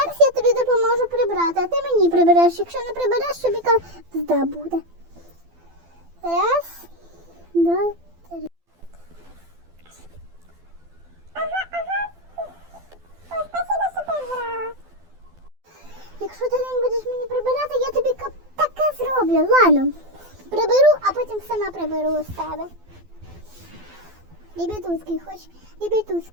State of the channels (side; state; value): left; late; 12 ms